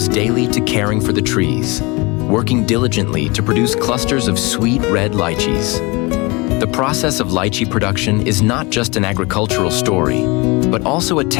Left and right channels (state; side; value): quieter; right; 26.0 dB